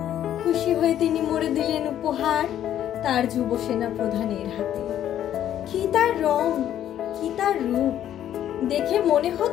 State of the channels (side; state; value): right; quieter; 11.1 dB